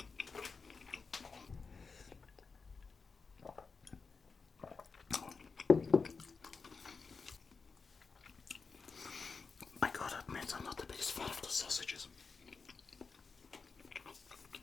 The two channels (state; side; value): quieter; right; 4.8 dB